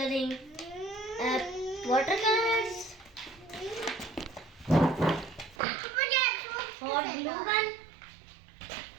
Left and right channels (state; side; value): drops out; left; at 5.6 s